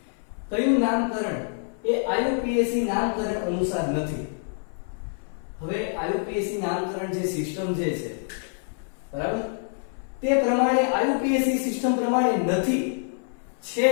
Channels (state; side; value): silent; right; 58 dB below the other